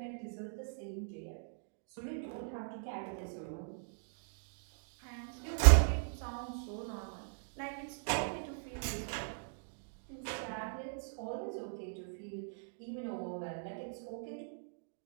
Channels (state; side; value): silent; left; digital silence